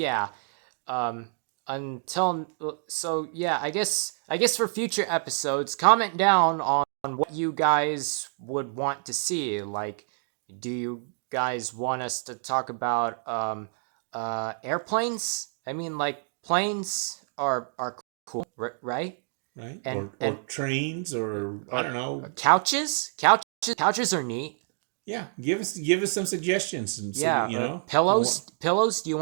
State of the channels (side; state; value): left; silent; 60 dB below the other